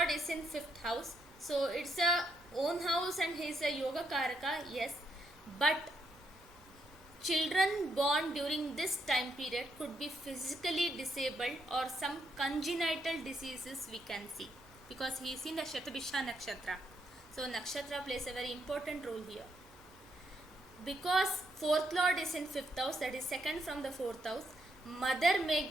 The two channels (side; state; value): both; normal; correlation 0.77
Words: is in 5th house, so it's a own house and he is a yoga karaka, yes, but children born during this time period could be physically disabled or some congenital diseases we can see, because he is in the Shatabhisha nakshatra. So nakshatra plays a very important role here. Because 4th lord is in 5th house, that is second from the 4th house, mother may